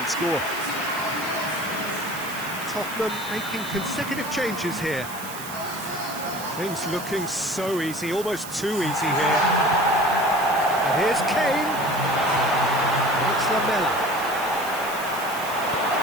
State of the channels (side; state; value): right; noise; hiss, 12 dB below the sound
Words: score. Tottenham making consecutive changes here. Things looking so easy, almost too easy here. And here's Kane. It's Lamela.